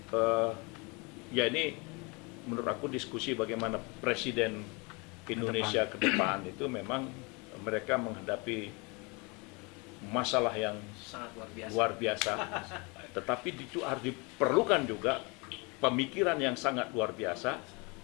ya ini menurut aku diskusi bagaimana presiden Indonesia ke depan itu memang mereka menghadapi masalah yang Sangat luar biasa. luar biasa, tetapi itu harus diperlukan juga pemikiran yang sangat luar biasa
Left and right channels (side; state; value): right; quieter; 29.3 dB